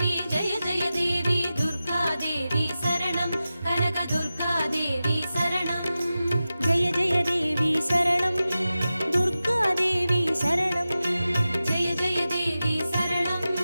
दुर्गा देवी शरणं कनक दुर्गा देवी शरणं जय जय देवी शरणं दुर्गादेवी शरणं जय जय देवी शरणं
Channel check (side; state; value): both; inverted; correlation -0.94